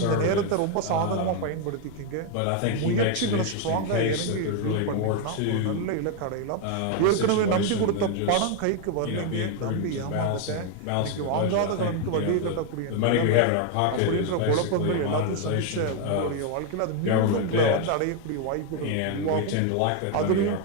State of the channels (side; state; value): both; different; correlation 0.01